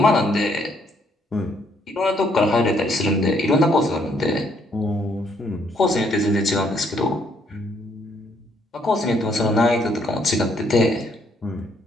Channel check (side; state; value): both; normal; correlation 0.69